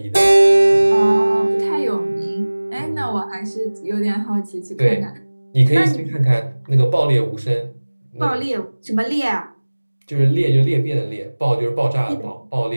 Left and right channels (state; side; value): inverted; both; correlation -1.00